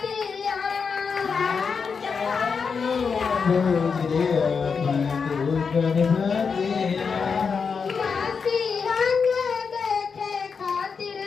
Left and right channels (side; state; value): right; quieter; 5.6 dB